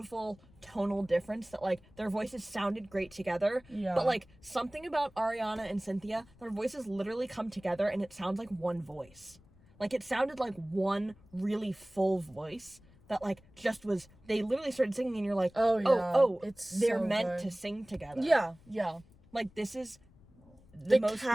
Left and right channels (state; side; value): noise; left; rumble, 26 dB below the sound